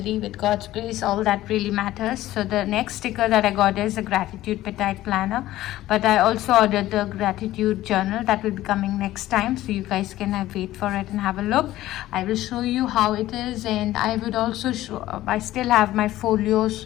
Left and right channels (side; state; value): right; quieter; 15.1 dB